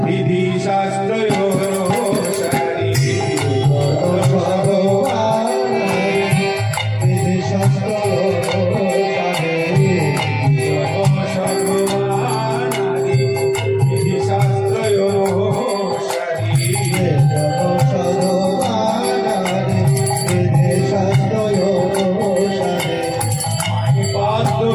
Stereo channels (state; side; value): identical; both; correlation 1.00